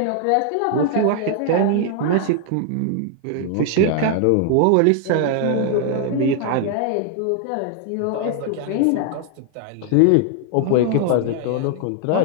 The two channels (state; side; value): different; both; correlation 0.00